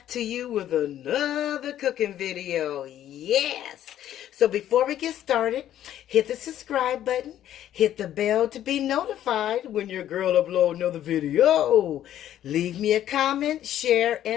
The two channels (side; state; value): right; quieter; 11.7 dB